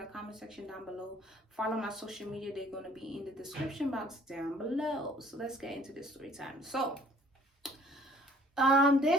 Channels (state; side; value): normal; both; correlation 0.57